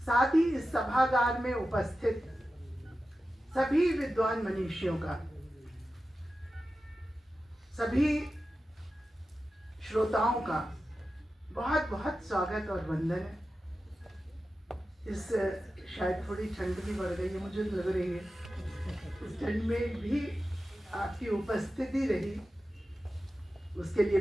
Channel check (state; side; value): normal; both; correlation 0.93